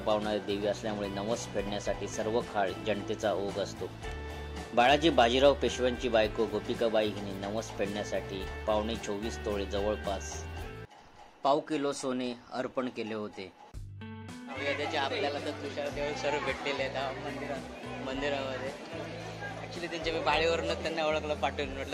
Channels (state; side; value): identical; both; correlation 1.00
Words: देवी असल्यामुळे नवस फेडण्यासाठी सर्व काळ जनतेचा ओघ असतो. बाळाजी बाजीराव पेशव्यांची बायको गोपिकाबाई हिने नवस फेडण्यासाठी 24.25 तोळे जवळपास पाव किलो सोने अर्पण केले होते. त्याचे आपल्याला तर तुषार देव सर्व भेटलेले आहेत मंदिरामध्ये. ऍक्च्युली त्यांच्या मी बाळीवरूनच त्यांना ओळखलं, पाठवून